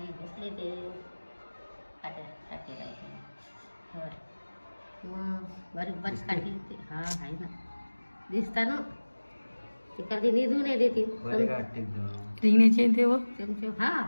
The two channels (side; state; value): both; inverted; correlation -1.00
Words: घुसले ते काटे टाके राहायचे. मग बारीक बारीक काठी हा आहे ना दिसता ना ते कधी निधून नाही देते. रिंगण्याची ते व चमचे हा